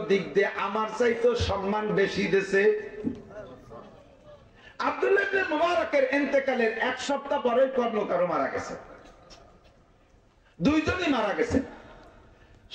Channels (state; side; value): identical; both; correlation 1.00